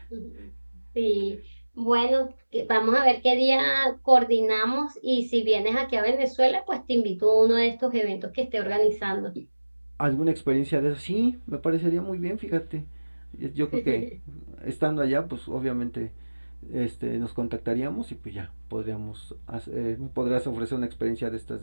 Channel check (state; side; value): inverted; both; correlation -1.00